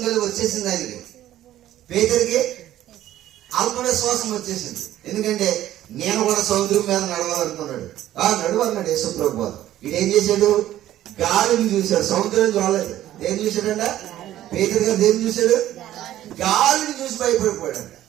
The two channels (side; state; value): left; quieter; 13.1 dB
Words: కలిగి వచ్చేసింది ఆయనకి. పేతురికి అల్పవిశ్వాసం వచ్చేసింది. ఎందుకంటే నేను కూడా సముద్రం మీద నడవాలనుకున్నాడు. నడువన్నాడు యేసుప్రభు వారు. ఇదేం చేశాడు, గాలిని చూశాడు, సముద్రం చూడలేదు. ఏం చూశాడంట పేతురు గారు? దేన్ని చూశాడు? గాలిని చూసి భయపడిపోయాడు.